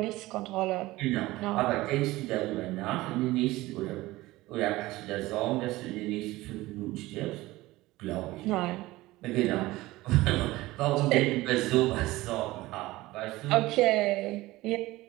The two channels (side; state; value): left; quieter; 18.7 dB